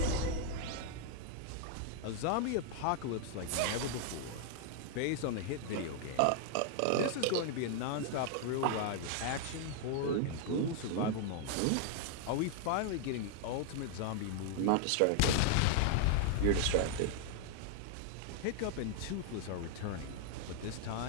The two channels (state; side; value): different; both; correlation 0.00